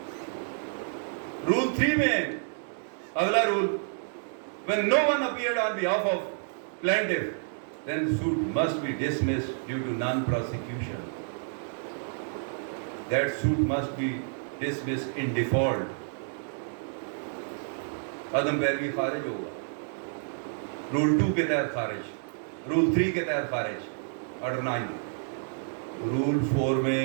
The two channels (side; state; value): left; silent; digital silence